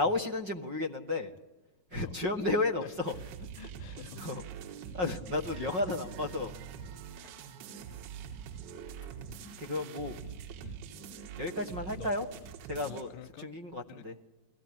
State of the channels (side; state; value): left; late; 5.5 ms